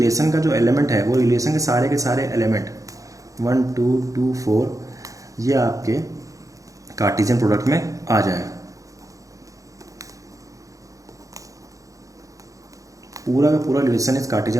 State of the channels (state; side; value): late; left; 0.16 ms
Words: का जो एलिमेंट है वो रिलेशन के सारे एलिमेंट 1 2 2 4 ये आपके कार्टेशियन प्रोडक्ट में आ जाए। पूरा का पूरा रिलेशन इस